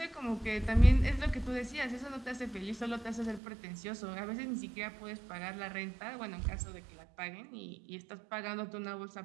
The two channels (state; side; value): drops out; left; at 3.4 s